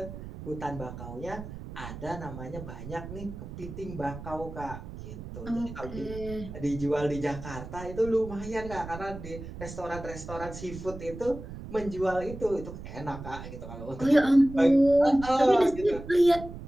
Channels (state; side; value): noise; right; rumble, 11 dB below the sound